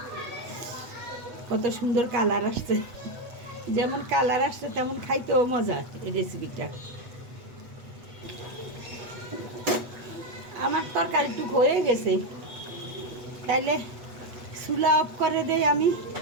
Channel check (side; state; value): left; late; 8.1 ms